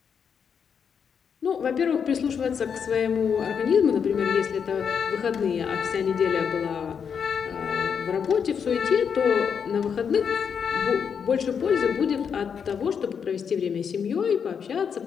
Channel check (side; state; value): right; quieter; 6.9 dB